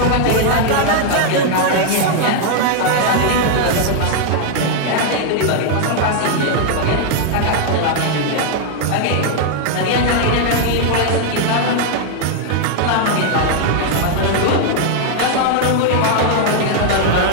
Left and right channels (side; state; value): both; different; correlation 0.00